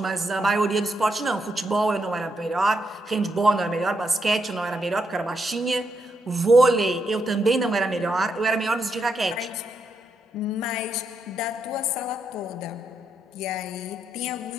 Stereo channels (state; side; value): normal; both; correlation 0.80